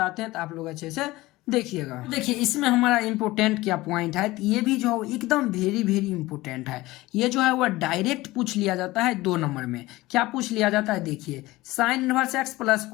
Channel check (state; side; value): quieter; right; 19.1 dB